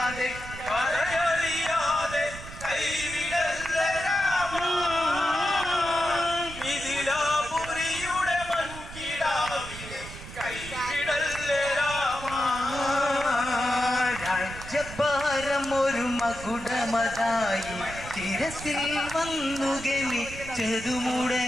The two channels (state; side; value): noise; right; rumble, 13 dB below the sound